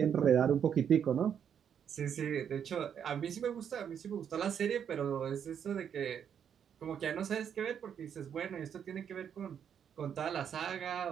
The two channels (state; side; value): quieter; left; 8.3 dB